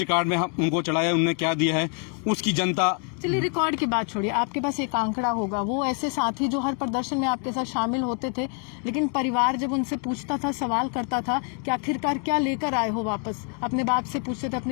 में हम उनको चढ़ाया, उन्होंने क्या दिया है, उसकी जनता। चलिए रिकॉर्ड की बात छोड़िए, आपके पास एक आंकड़ा होगा, वो ऐसे साथी जो हर प्रदर्शन में आपके साथ शामिल होते थे, लेकिन परिवार जब उनसे पूछता था, सवाल करता था कि आखिरकार क्या लेकर आए हो वापस, अपने बाप से पूछते थे,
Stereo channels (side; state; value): right; quieter; 39.2 dB